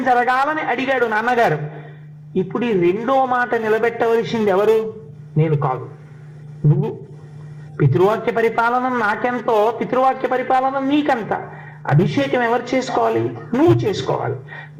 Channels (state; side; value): identical; both; correlation 1.00